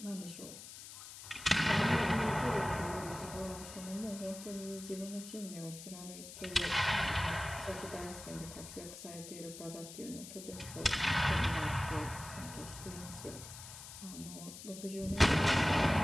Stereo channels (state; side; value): noise; left; hiss, 13 dB below the sound